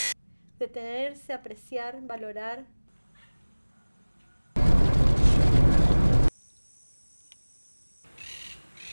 Detenerse, apreciar, valorar.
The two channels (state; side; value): inverted; both; correlation -1.00